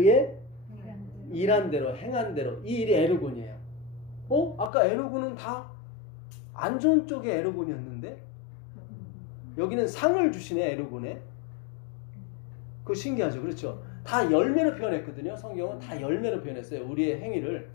일한 대로 행한 대로 이 일이 에르곤이에요. 아까 에르곤은 다 안 좋은 쪽의 에르곤이었는데 여기는 상을 주시네. 에르곤에. 그거 신기하죠. 그렇죠. 다 열매로 표현했거든요. 성경은 다 열매로 표현했어요. 우리의 행위를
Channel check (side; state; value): right; drops out; at 4.7 s